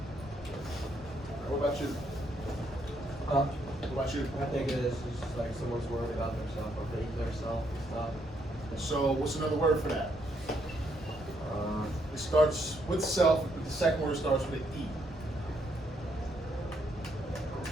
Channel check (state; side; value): normal; both; correlation 0.74